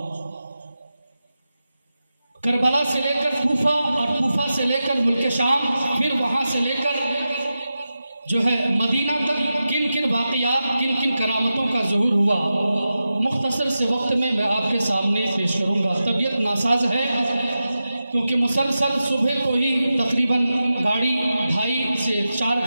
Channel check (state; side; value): inverted; both; correlation -0.92